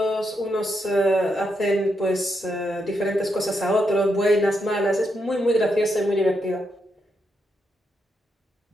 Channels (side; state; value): both; normal; correlation 0.82